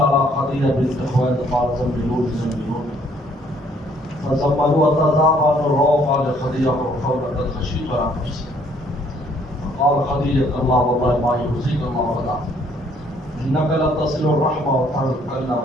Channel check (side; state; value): both; normal; correlation 0.63